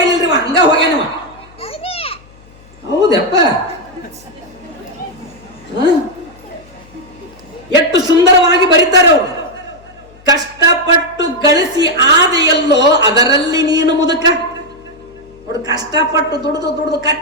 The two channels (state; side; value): noise; left; hum, 25 dB below the sound